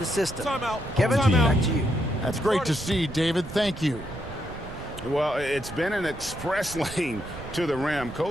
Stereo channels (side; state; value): right; noise; rumble, 13 dB below the sound